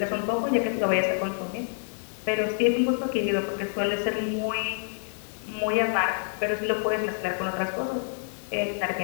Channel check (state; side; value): silent; right; 60 dB below the other